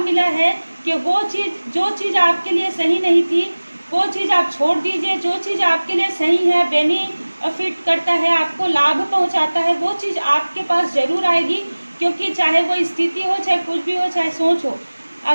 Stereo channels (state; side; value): inverted; both; correlation -1.00